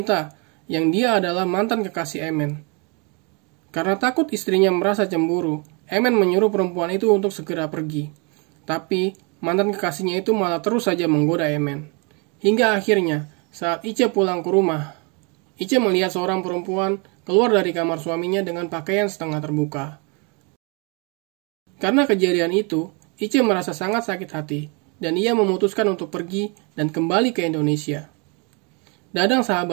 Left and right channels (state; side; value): quieter; left; 32.9 dB